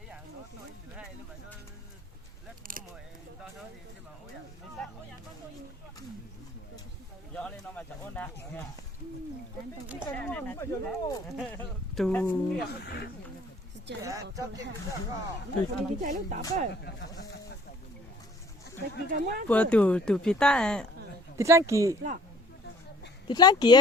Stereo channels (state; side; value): normal; both; correlation 0.55